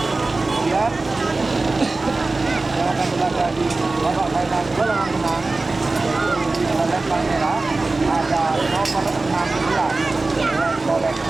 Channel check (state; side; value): quieter; left; 3.4 dB